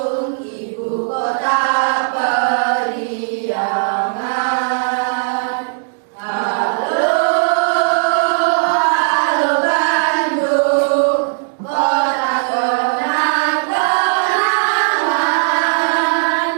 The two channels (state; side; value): silent; left; digital silence